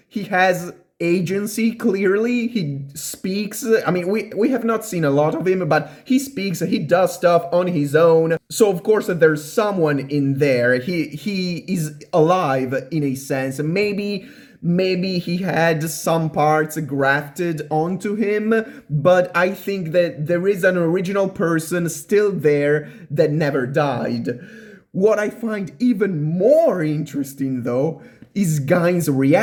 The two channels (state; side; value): identical; both; correlation 1.00